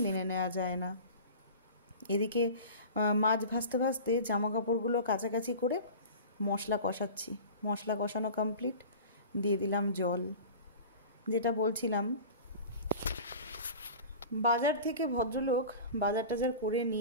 মেনে নেওয়া যায় না। এদিকে মাছ ভাজতে জামা কাপড়গুলো কাছাকাছি করে মশলা কষাচ্ছি। মশলা কষানো কমপ্লিট, দিয়ে দিলাম জল। যেটা বলছিলাম, বাজার থেকে ভদ্রলোক বাজার টাজার করে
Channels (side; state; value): both; inverted; correlation -0.36